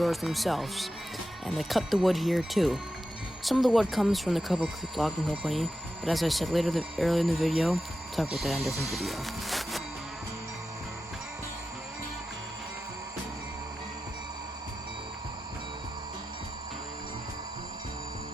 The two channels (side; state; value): both; normal; correlation 0.91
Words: themselves, and they cut the wood here too. Some of the wood comes from the Cripple Creek Logging Company, but as I said earlier in the video, I'll talk about that in a different video.